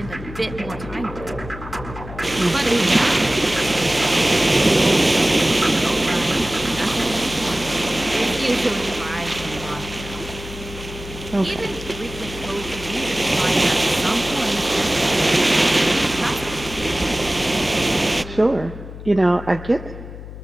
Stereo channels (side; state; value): left; noise; hum, 12 dB below the sound